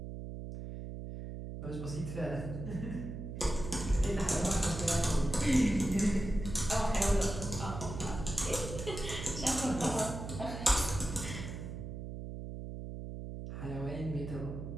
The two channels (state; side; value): noise; right; hum, 8 dB below the sound